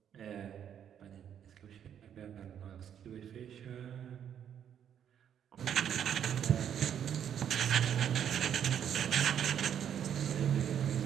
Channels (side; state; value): left; quieter; 9.1 dB